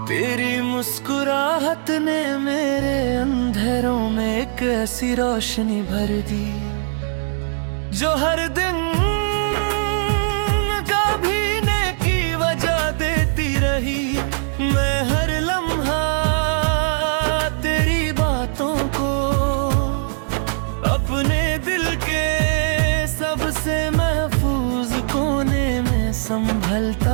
तेरी मुस्कुराहट ने मेरे अंधेरों में एक ऐसी रोशनी भर दी जो हर दिन कभी नेकी वजह देती रही। मैं हर लम्हा तेरी बातों को अपने दिल के सबसे महफूज कोने में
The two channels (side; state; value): left; silent; digital silence